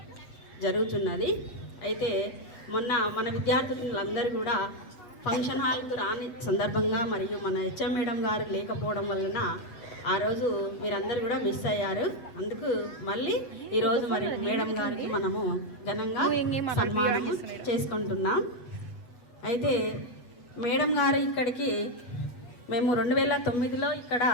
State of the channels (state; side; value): late; right; 8.1 ms